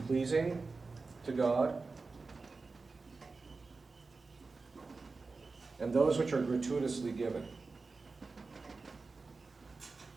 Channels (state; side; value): quieter; left; 4.0 dB